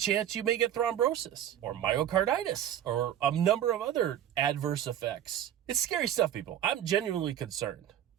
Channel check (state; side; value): quieter; left; 10.7 dB